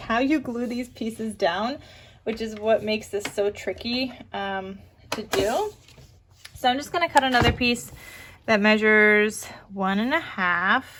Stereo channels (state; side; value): identical; both; correlation 1.00